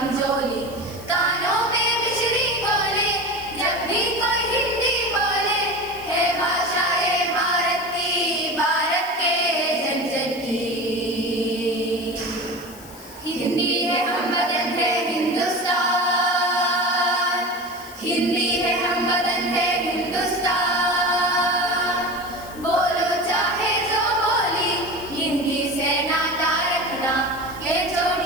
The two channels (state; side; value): noise; left; hiss, 19 dB below the sound